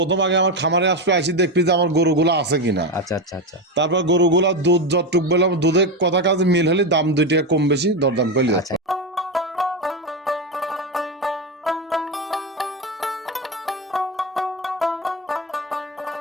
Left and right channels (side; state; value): both; normal; correlation 0.14